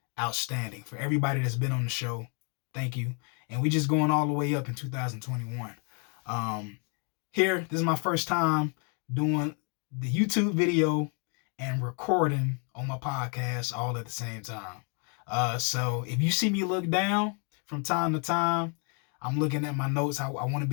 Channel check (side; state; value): right; quieter; 39.7 dB